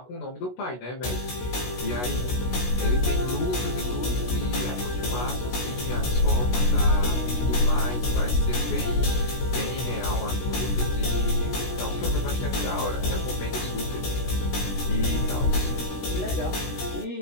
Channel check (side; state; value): right; late; 16 ms